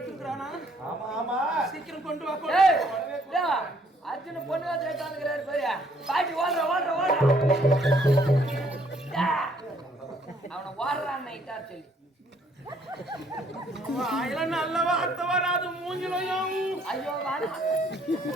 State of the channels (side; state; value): both; normal; correlation 0.65